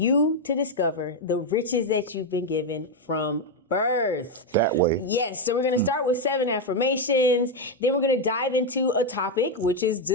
to discover the riches that you've been given from birth. That way. Yes, so we're going to start with 7 affirmations. Then we're going to dive into a topic, which is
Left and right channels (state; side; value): normal; both; correlation 0.04